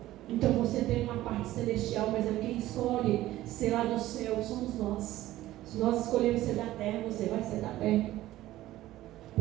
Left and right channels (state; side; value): quieter; left; 15.4 dB